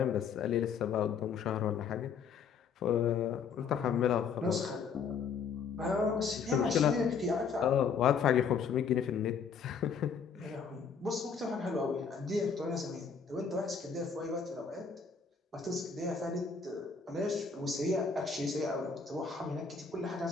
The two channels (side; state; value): right; quieter; 6.0 dB